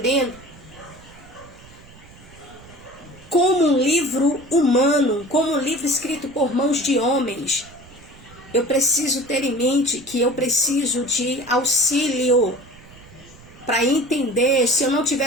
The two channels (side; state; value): right; noise; rumble, 22 dB below the sound